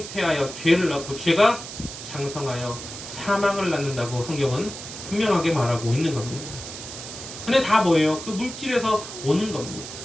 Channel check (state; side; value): noise; right; hiss, 10 dB below the sound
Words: 죄를 낳고 죄가 장성하여 사망을 낳는다고 성경은 분명하게 말하고 있는 겁니다. 근데 다 뭐예요? 그 물질에서 오는 겁니다.